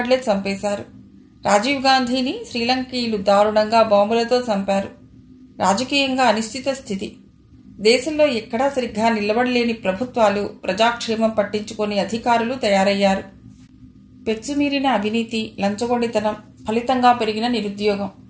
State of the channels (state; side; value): identical; both; correlation 1.00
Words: చంపేశారు. రాజీవ్ గాంధీని శ్రీలంకీయులు దారుణంగా బాంబులతో చంపారు. రాజకీయంగా అనిశ్చిత స్థితి. దేశంలో ఎక్కడా సరిగ్గా నిలబడలేని ప్రభుత్వాలు, ప్రజాక్షేమం పట్టించుకొని అధికారులు తయారయ్యారు. పెచ్చుమీరిన అవినీతి, లంచగొండితనం, ఫలితంగా పెరిగిన నిరుద్యోగం.